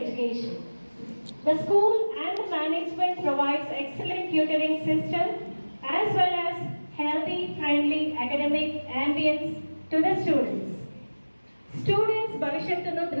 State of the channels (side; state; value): both; inverted; correlation -1.00